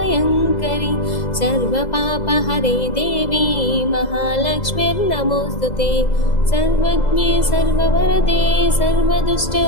सर्वपापहरे देवी महालक्ष्मीर्नमोऽस्तुते। सर्वज्ञे सर्ववरदे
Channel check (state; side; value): late; right; 2.0 ms